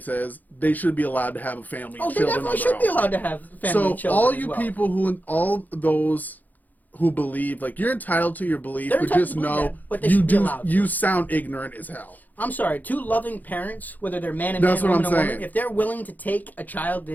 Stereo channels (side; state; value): right; late; 0.083 ms